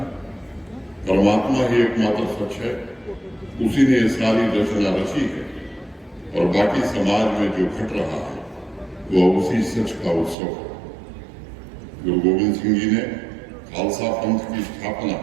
परमात्मा ही एकमात्र सच है, उसी ने ये सारी रचना रची है और बाकी समाज में जो घट रहा है वह उसी सच का उत्सव है। गुरु गोविंद सिंह जी ने खालसा पंथ की स्थापना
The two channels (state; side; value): drops out; left; at 10.4 s